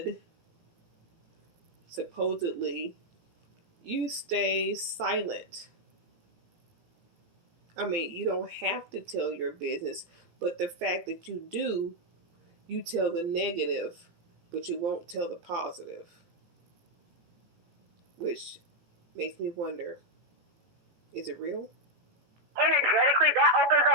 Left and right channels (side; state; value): left; late; 17 ms